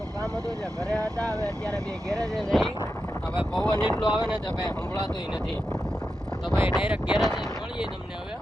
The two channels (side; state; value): both; normal; correlation 0.89